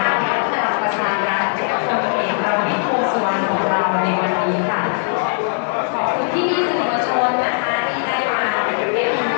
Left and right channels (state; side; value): silent; right; digital silence